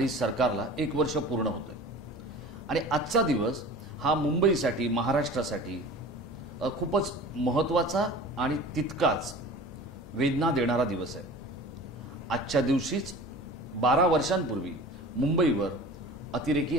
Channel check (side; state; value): both; normal; correlation 0.39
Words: सरकारला 1 वर्ष पूर्ण होतंय आणि आजचा दिवस हा मुंबईसाठी, महाराष्ट्रासाठी खूपच महत्त्वाचा आणि तितकाच वेदना देणारा दिवस आहे. आजच्या दिवशीच 12 वर्षांपूर्वी मुंबईवर अतिरेकी